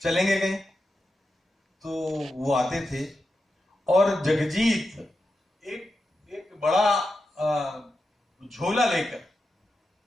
चलेंगे कहीं। तो वो आते थे और जगजीत एक बड़ा झोला लेकर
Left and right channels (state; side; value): normal; both; correlation 0.89